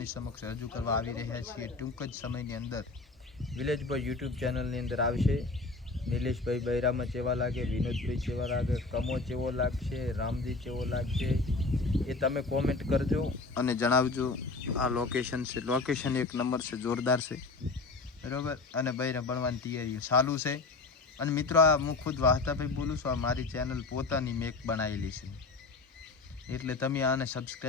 સમક્ષ રજૂ કરવા આવી રહ્યા છીએ। ટૂંક જ સમયની અંદર વિલેજ બોય યુટ્યુબ ચેનલની અંદર આવશે। નિલેશભાઈ બૈરામાં ચેવા લાગે, વિનોદભાઈ ચેવા લાગે, કમો ચેવો લાગશે, રામજી ચેવો લાગશે, એ તમે કોમેન્ટ કરજો અને જણાવજો। આ લોકેશન છે, લોકેશન એક નંબર છે, જોરદાર છે, બરાબર। અને બૈરા બનવાની તૈયારી ચાલુ છે। અને મિત્રો આ હું ખુદ વાહતાભાઈ બોલું છું, આ મારી ચેનલ પોતાની મેક બનાવેલી છે, એટલે તમે આને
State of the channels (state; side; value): quieter; right; 3.7 dB